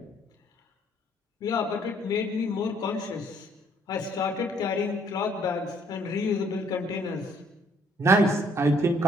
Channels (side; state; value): both; normal; correlation 0.64